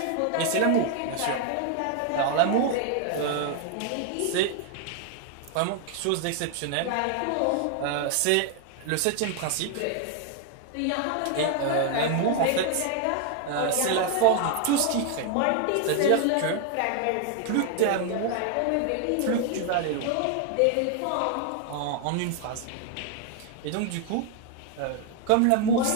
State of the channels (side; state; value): both; different; correlation 0.00